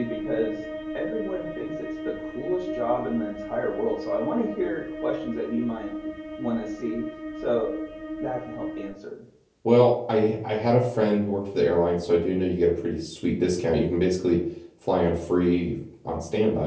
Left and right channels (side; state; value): both; identical; correlation 1.00